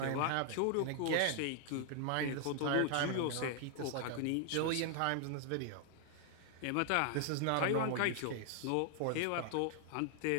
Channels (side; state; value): both; different; correlation 0.00